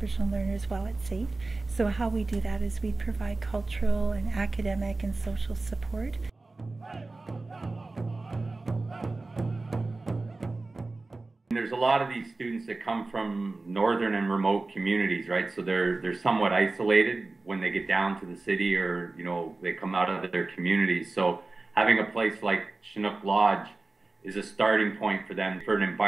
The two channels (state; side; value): quieter; left; 3.4 dB